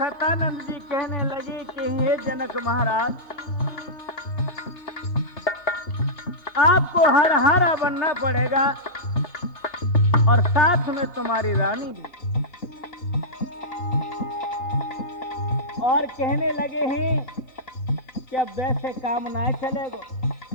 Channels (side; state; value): right; late; 2.8 ms